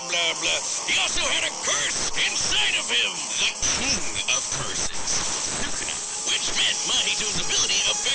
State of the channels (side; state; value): both; identical; correlation 1.00